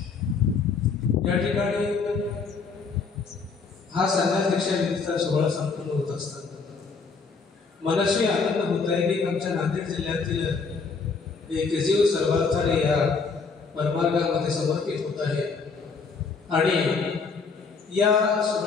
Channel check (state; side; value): quieter; right; 4.9 dB